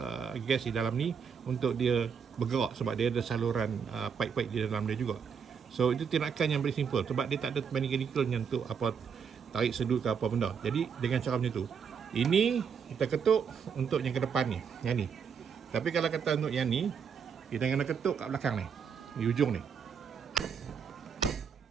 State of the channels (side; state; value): left; quieter; 6.7 dB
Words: gas di dalam ni untuk dia bergerak, sebab dia ada saluran pipe-pipe di dalam dia juga. So itu tindakan yang very simple, sebab dia tak ada mechanical yang untuk tarik sedut ke apa benda. Jadi dengan cara macam tu, ini kita ketuk untuk yang ke depan ni, yang ni. Tapi kalau kata untuk yang ni, kita kena ketuk kat belakang ni, di ujung ni.